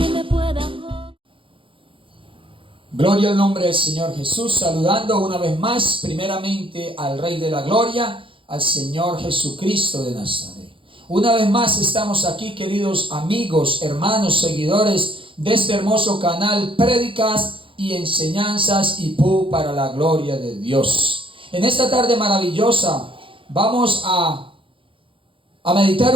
me pueda... Gloria al nombre del Señor Jesús, saludando una vez más primeramente al Rey de la Gloria, al Señor Jesucristo de Nazaret. Una vez más estamos aquí, queridos amigos, hermanos, seguidores de este hermoso canal, prédicas y enseñanzas IPU para la gloria de Dios. En esta tarde maravillosa vamos a meditar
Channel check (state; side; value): late; left; 0.25 ms